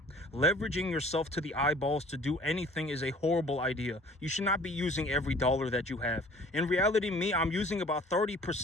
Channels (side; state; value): both; normal; correlation 0.51